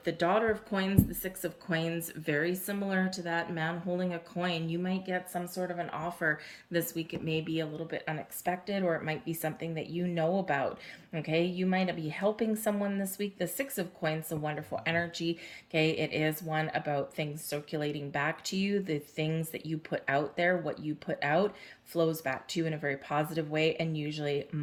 Daughter of Coins, the Six of Coins, very similar to that man holding a coin. You might get some sort of an offer this week. It may be a little bit unexpected, or it might be something that you know about, okay? You might be helping someone this week. The Six of Coins, a wonderful energy, okay? It is one about things circulating back to you. The things that you put out there, what you put out, flows back to you in a very positive way and usually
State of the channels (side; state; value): both; identical; correlation 1.00